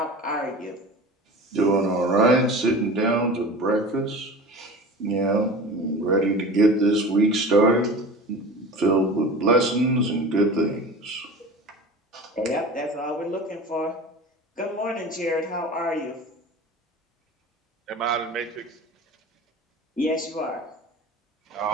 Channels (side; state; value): both; normal; correlation 0.36